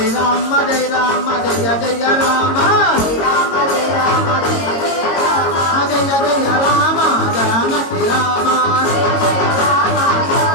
జయ రామ జయ జయ రామ జయ జయ రామ జానకి రామ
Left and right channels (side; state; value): right; late; 22 ms